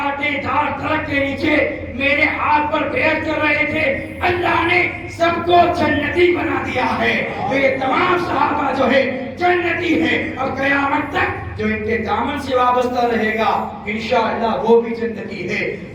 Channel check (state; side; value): identical; both; correlation 1.00